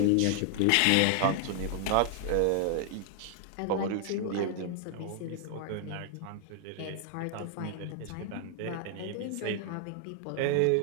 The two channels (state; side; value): different; both; correlation 0.00